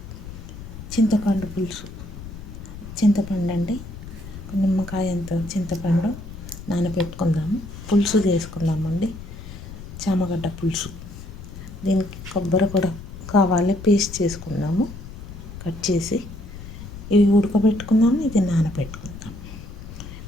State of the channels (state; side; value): noise; left; rumble, 12 dB below the sound